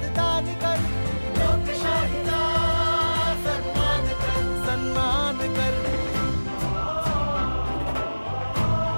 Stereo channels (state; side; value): inverted; both; correlation -1.00